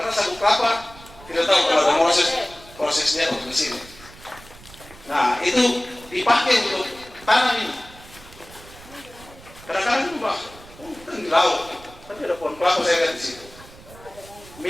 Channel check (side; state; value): right; noise; rumble, 20 dB below the sound